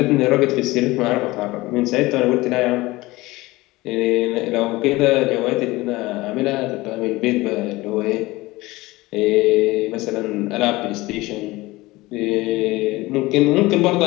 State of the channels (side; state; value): right; quieter; 20.2 dB